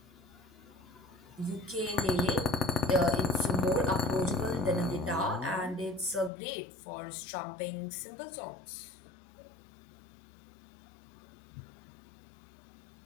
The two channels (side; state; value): right; drops out; at 6.3 s